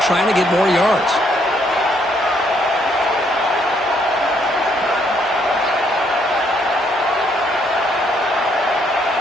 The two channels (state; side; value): normal; both; correlation 0.70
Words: to get more yards.